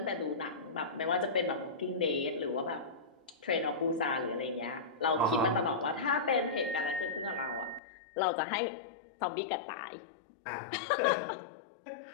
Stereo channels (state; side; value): drops out; right; at 7.8 s